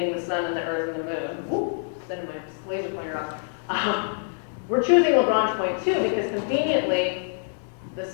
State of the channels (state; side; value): silent; right; digital silence